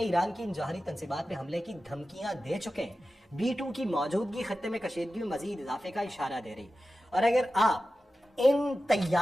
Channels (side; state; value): both; normal; correlation 0.94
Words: ایران کی ان جوہری تنصیبات پہ حملے کی دھمکیاں دے چکے ہیں, B-2 کی موجودگی خطے میں کشیدگی میں مزید اضافے کا اشارہ دے رہی. اور اگر آپ ان